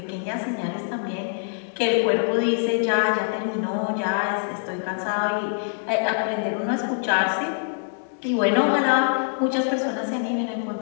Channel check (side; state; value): right; silent; digital silence